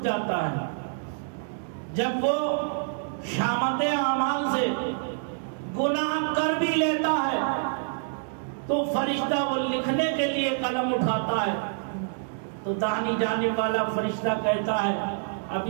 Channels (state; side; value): silent; left; digital silence